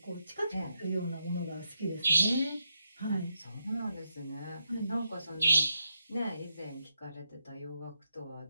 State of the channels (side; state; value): both; inverted; correlation -0.84